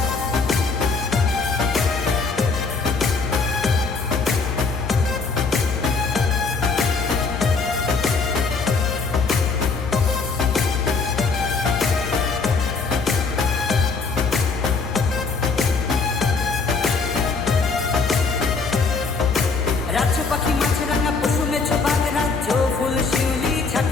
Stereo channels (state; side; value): quieter; right; 4.5 dB